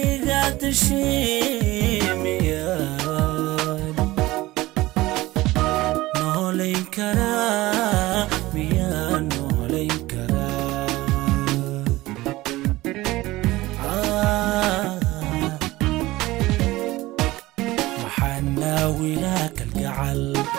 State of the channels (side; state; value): left; quieter; 18.6 dB